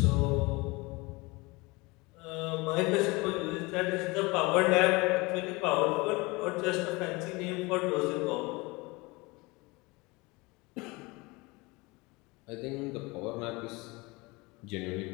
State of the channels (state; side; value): quieter; right; 24.6 dB